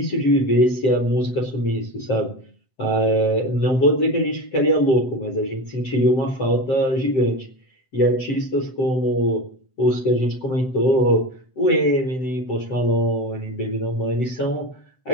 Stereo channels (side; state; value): right; late; 7.8 ms